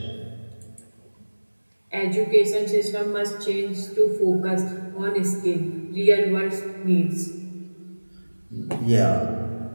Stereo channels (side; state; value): both; inverted; correlation -1.00